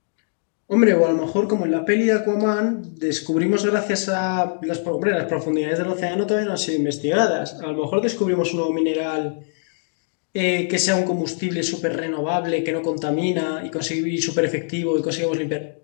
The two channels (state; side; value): silent; right; digital silence